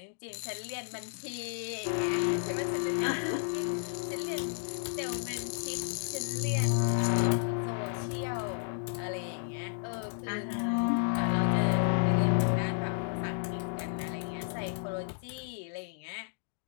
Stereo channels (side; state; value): right; silent; digital silence